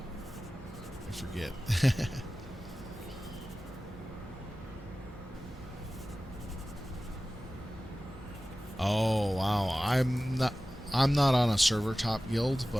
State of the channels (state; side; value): normal; both; correlation 0.96